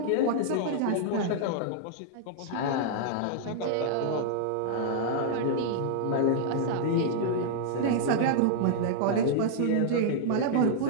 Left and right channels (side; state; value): both; different; correlation -0.01